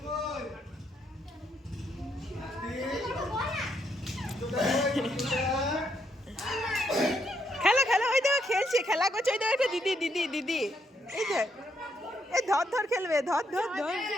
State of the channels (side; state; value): both; normal; correlation 0.76